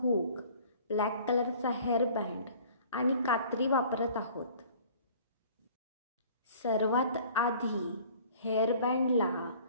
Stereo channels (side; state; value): both; inverted; correlation -0.50